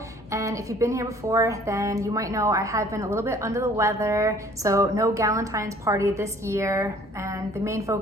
And if you've been here before, then you might know I have been a little bit under the weather, so no Valentine's party this year. And the main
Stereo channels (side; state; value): both; normal; correlation 0.54